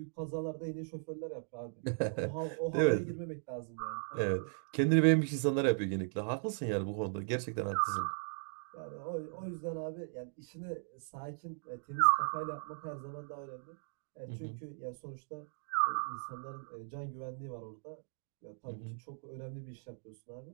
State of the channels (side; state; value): left; silent; digital silence